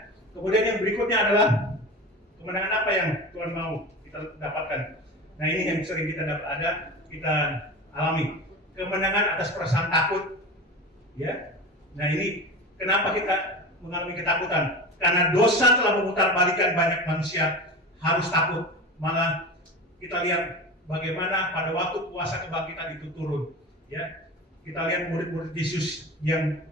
Kemudian yang berikutnya adalah kemenangan apa yang Tuhan mau kita dapatkan. Nah ini yang sering kita alami. Kemenangan atas perasaan takut. Ya. Nah ini kenapa kita mengalami ketakutan? Karena dosa telah memutarbalikkan banyak manusia harus takut. Malah kita lihat bagaimana pada waktu puasa kebangkitan itu turun, ya. Kita lihat murid-murid Yesus yang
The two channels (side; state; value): both; normal; correlation 0.29